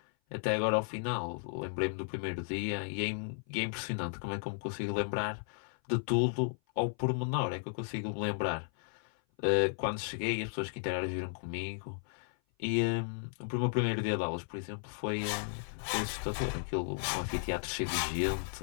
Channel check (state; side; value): silent; right; 55 dB below the other